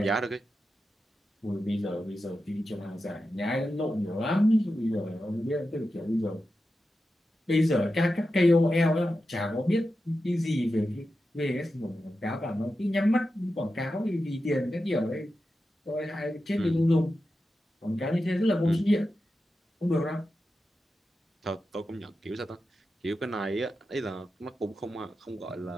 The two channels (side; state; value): both; normal; correlation 0.91